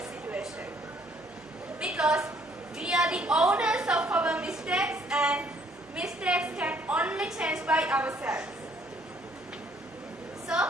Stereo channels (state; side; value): normal; both; correlation 0.63